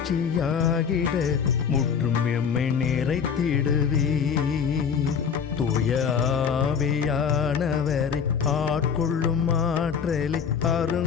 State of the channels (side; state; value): right; quieter; 6.9 dB